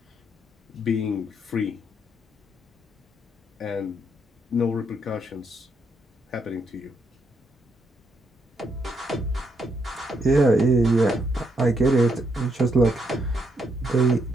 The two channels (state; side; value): normal; both; correlation 0.76